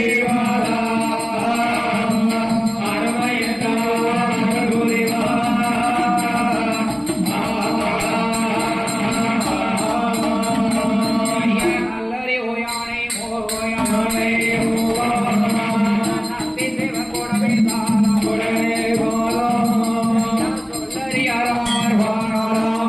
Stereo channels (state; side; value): identical; both; correlation 1.00